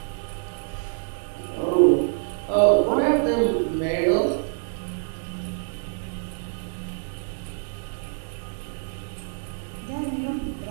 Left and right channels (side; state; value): left; silent; digital silence